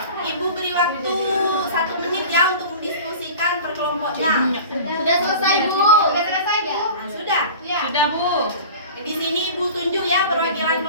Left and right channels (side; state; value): both; inverted; correlation -0.38